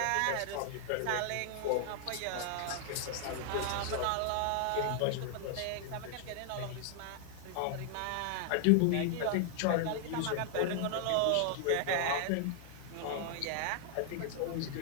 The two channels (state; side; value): different; both; correlation 0.00